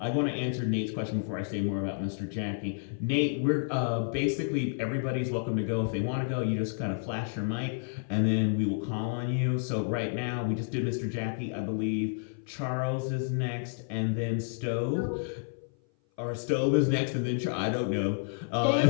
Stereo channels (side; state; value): right; silent; 56 dB below the other